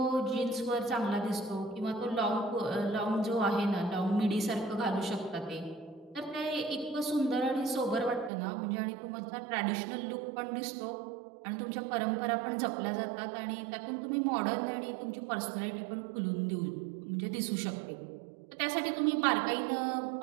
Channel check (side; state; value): left; drops out; at 8.3 s